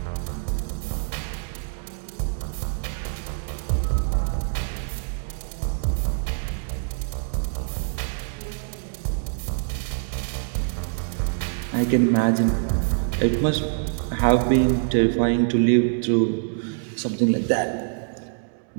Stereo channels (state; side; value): silent; left; digital silence